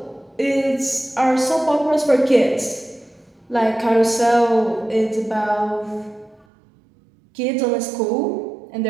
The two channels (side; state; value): left; drops out; at 6.5 s